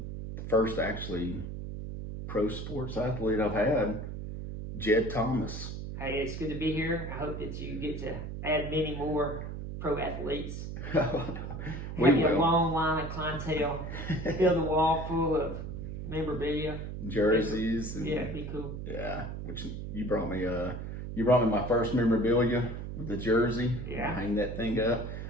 first actually pro sports athlete I've had, Jed Thomas. Hey, it's good to be here. I hope that you get to add many more pro athletes. We Have a will. long line of clientele. Fill the wall full of memorabilia. Jerseys. And, Yeah, it'd be cool. Yeah, which you brought me. You brought me my first memorabilia with the jersey. Yeah. Hang that thing up.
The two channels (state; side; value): noise; right; hum, 7 dB below the sound